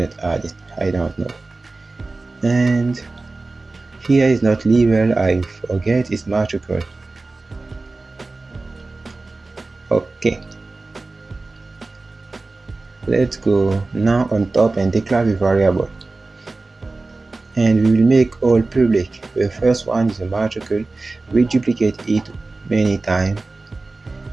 add. I don't know. And here is not level. I forget it's matricle. Okay. Let's go now on top and declare the variable. And we will make all public. The first one is a matricle. We duplicate it many times,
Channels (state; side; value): quieter; left; 3.4 dB